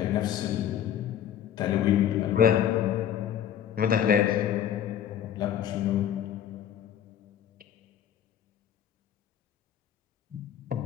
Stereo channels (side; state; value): right; quieter; 10.1 dB